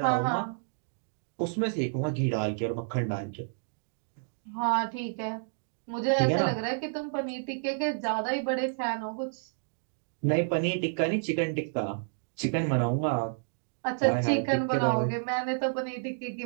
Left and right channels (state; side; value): silent; left; digital silence